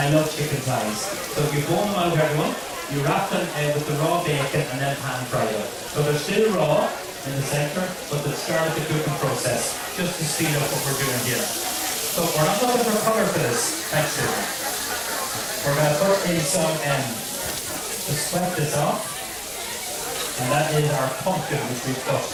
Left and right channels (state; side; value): identical; both; correlation 1.00